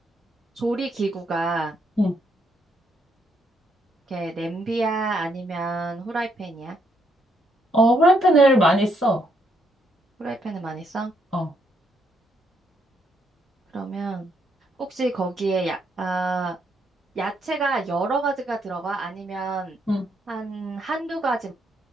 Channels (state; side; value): normal; both; correlation 0.74